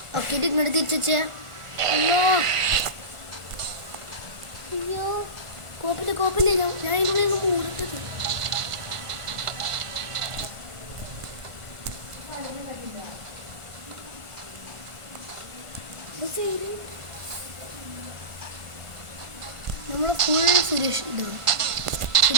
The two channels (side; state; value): left; late; 1.5 ms